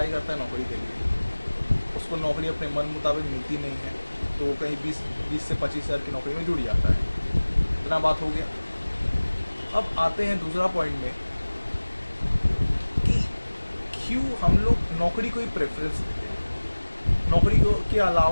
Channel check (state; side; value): inverted; both; correlation -1.00